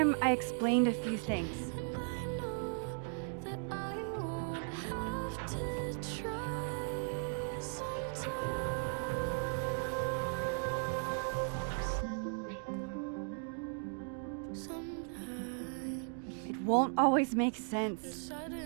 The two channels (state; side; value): silent; left; 53 dB below the other